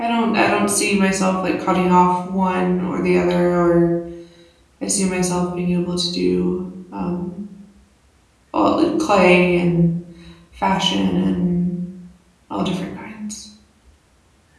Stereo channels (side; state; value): both; identical; correlation 1.00